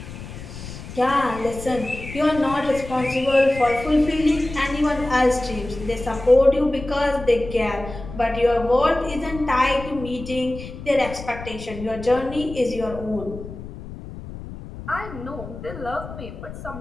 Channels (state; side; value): noise; left; rumble, 12 dB below the sound